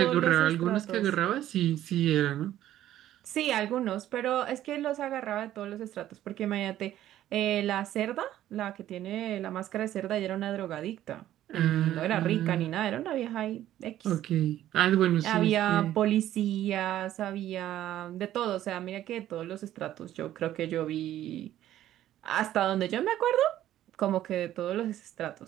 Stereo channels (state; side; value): quieter; left; 12.8 dB